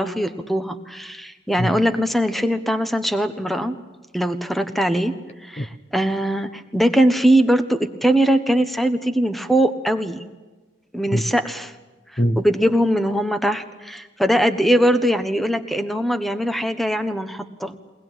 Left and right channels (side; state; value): both; normal; correlation 0.87